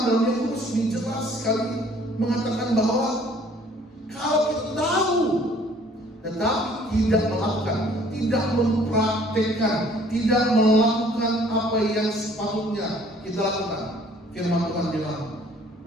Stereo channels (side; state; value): both; normal; correlation 0.57